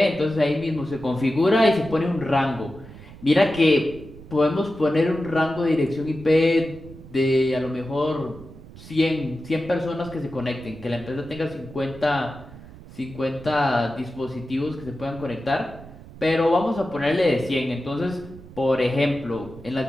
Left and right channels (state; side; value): noise; right; rumble, 17 dB below the sound